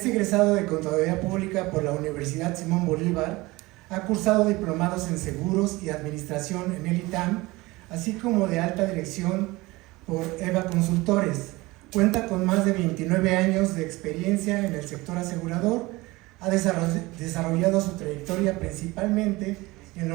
egresado de Contaduría Pública por la Universidad Simón Bolívar, ha cursado diplomados en Seguros y Administración en el ITAM, así como de alta dirección por EVA Consultores. Cuenta con más de 29 años de experiencia en el sector asegurador, ha desarrollado su trayectoria principalmente en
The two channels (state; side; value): quieter; left; 21.4 dB